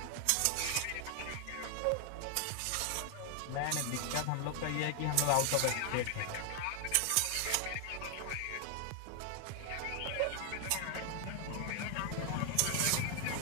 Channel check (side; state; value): both; different; correlation 0.00